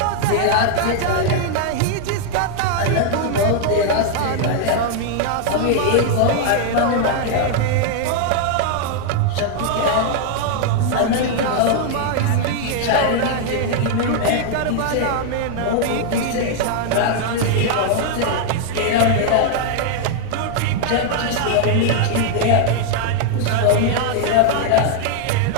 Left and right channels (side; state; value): both; different; correlation 0.00